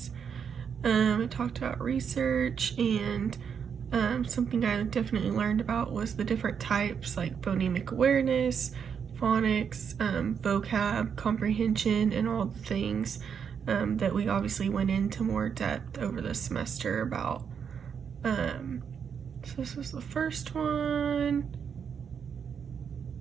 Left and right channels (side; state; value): left; quieter; 7.1 dB